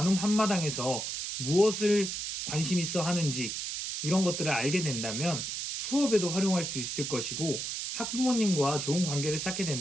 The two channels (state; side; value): noise; right; hiss, 4 dB below the sound